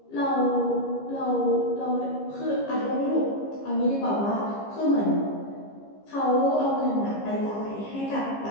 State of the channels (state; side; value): late; right; 15 ms